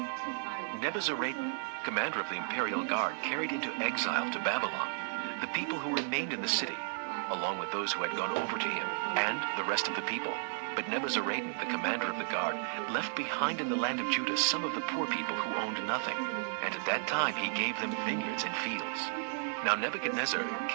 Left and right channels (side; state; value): left; silent; 55 dB below the other